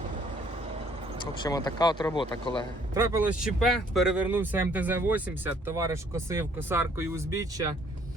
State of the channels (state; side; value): normal; both; correlation 0.62